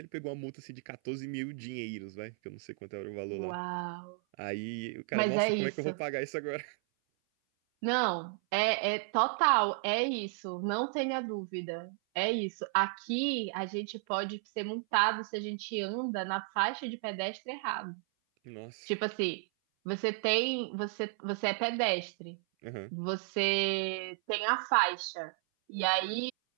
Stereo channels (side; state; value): left; silent; 55 dB below the other